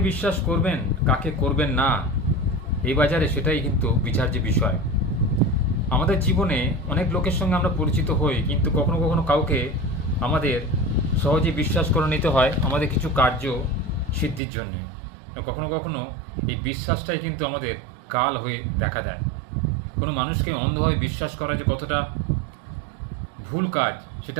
বিশ্বাস করবেন কাকে করবেন না এই বাজারে সেটাই কিন্তু বিচার্য বিষয়। আমাদের জীবনে অনেক লোকের সঙ্গে আমরা পরিচিত হই, কিন্তু কখনো কখনো কাউকে আমাদের সহজে বিশ্বাস করে নিতে হয় আমাদের কিছু কার্য সিদ্ধির জন্যে। কখনো কখনো এই বিশ্বাসটাই কিন্তু আমাদের কাল হয়ে দেখা দেয়। কোনো মানুষকে অন্ধভাবে বিশ্বাস করা যে কতটা ভুল কাজ সেটা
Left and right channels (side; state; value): left; drops out; at 14.4 s